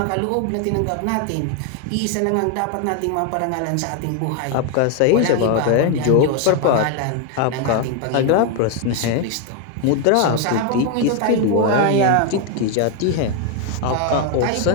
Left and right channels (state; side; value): different; both; correlation 0.01